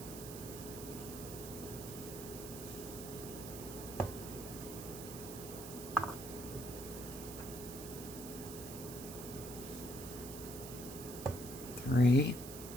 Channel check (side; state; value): right; noise; hiss, 10 dB below the sound